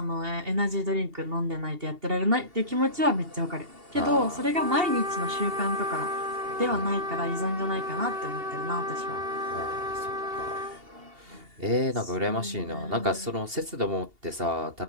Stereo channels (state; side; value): late; left; 2.8 ms